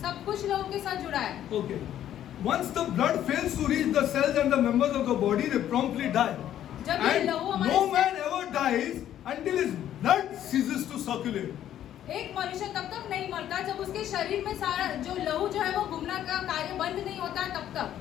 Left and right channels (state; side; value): quieter; right; 11.3 dB